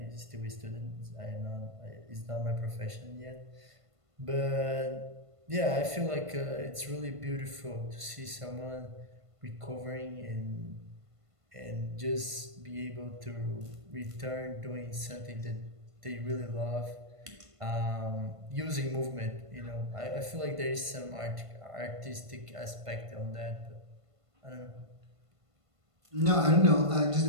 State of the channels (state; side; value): late; left; 1.5 ms